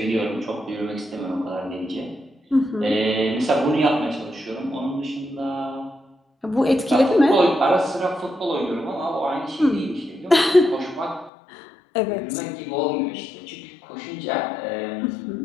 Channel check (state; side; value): drops out; right; at 11.3 s